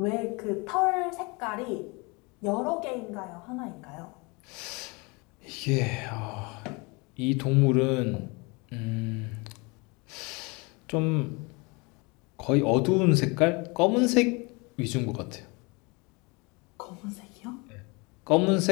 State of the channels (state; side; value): quieter; right; 28.1 dB